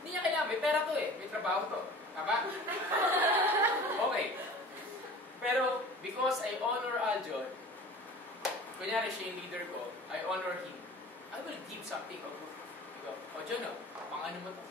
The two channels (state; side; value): normal; both; correlation 0.42